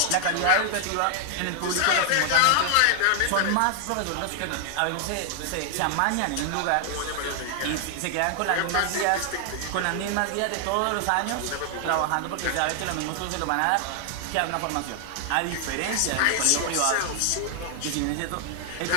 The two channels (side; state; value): both; different; correlation 0.00